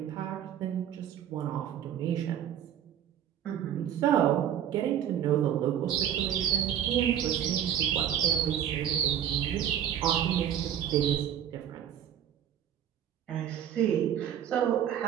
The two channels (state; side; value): quieter; left; 10.0 dB